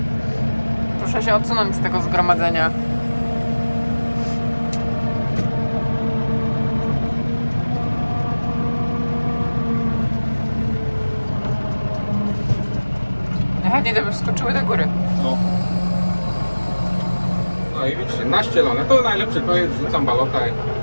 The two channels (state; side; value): inverted; both; correlation -1.00